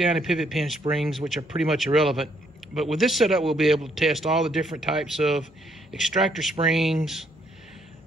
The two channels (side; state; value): both; normal; correlation 0.70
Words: and pivot pin springs, which are pretty much irrelevant. But with this setup, we'll be able to test all the different types of extractor springs,